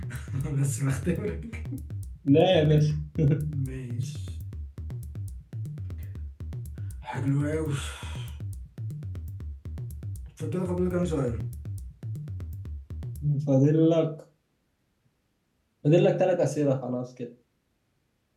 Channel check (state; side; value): identical; both; correlation 1.00